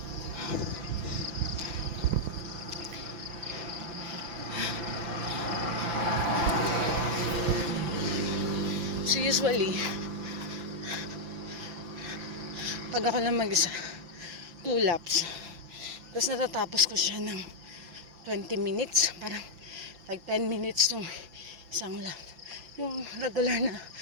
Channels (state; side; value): late; left; 5.9 ms